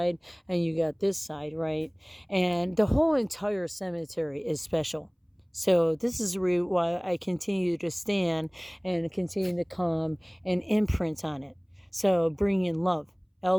and you got this side, right? And the whole entire cemetery is special. So this is why I continue to stand and continue to come and imprint on it. So bring in love.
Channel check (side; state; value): both; identical; correlation 1.00